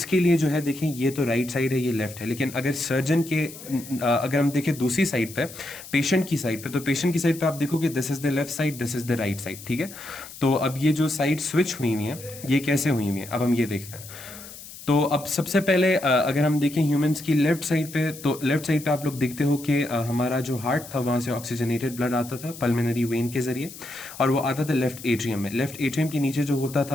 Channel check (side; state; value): left; noise; hiss, 15 dB below the sound